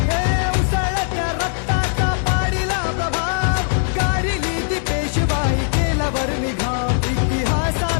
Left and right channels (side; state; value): right; silent; digital silence